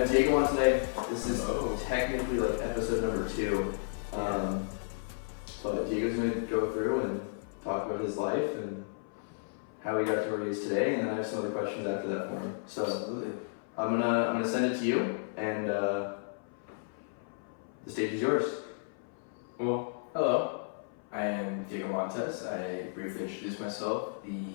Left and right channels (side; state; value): right; silent; 56 dB below the other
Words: Diego on today. This is technically like episode number 2. But Diego's gonna go through and talk about his life and how he got to where he is today, and then I have some other questions after that for him. So Absolutely. I'm gonna send it to you, and the stage is yours. Well, hello. I am Diego Montes. I briefly introduced myself